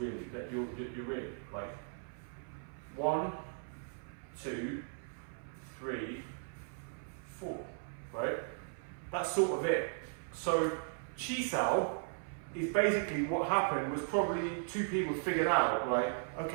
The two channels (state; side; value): silent; left; 53 dB below the other